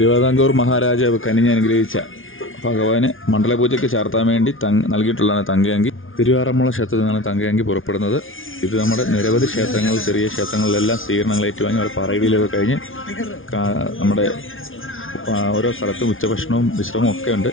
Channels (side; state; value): right; late; 0.58 ms